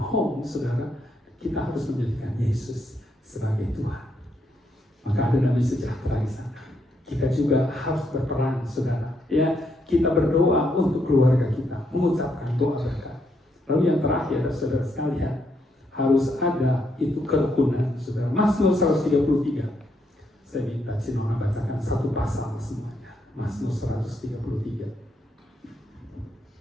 saudara, kita harus menjadikan Yesus sebagai Tuhan. Maka ada damai sejahtera di sana. Kita juga harus berperan, saudara. Ya, kita berdoa untuk keluarga kita, mengucapkan doa berkat. Lalu yang terakhir, saudara sekalian, harus ada itu kerukunan, saudara. Mazmur 133. Saya minta Cinona bacakan satu pasal semuanya. Mazmur 133.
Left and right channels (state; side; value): normal; both; correlation 0.77